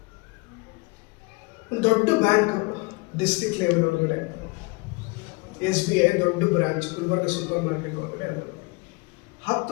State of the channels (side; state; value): right; quieter; 28.0 dB